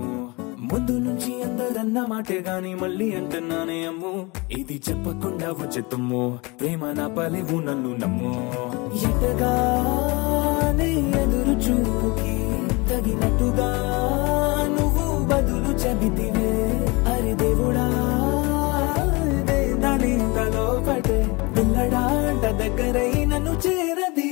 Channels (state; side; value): quieter; right; 26.3 dB